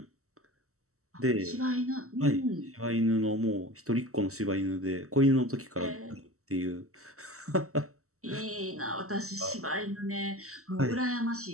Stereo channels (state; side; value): late; left; 0.64 ms